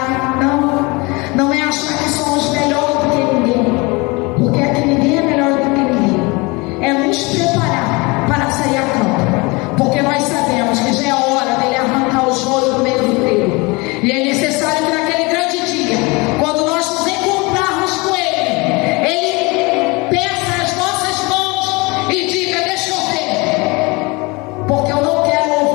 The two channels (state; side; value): quieter; right; 26.1 dB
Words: não é achar que somos melhores do que ninguém, porque aqui ninguém é melhor do que ninguém. É nos preparar para sair a campo, porque nós sabemos que já é hora dele arrancar o joio do meio do trigo, e é necessário que naquele grande dia, quando nós nos encontrarmos com ele peça as nossas mãos e diga: deixa eu ver, porque eu não quero